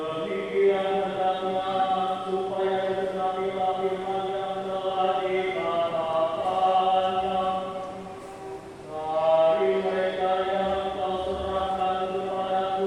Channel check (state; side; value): identical; both; correlation 1.00